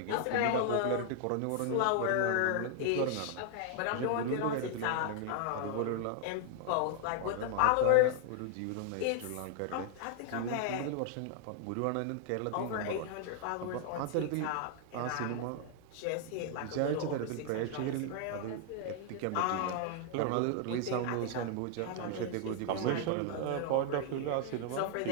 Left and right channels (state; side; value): different; both; correlation 0.00